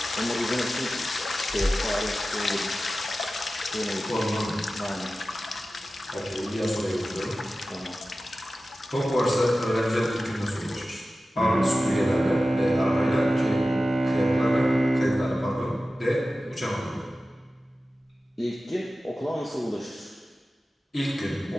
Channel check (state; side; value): normal; both; correlation 0.95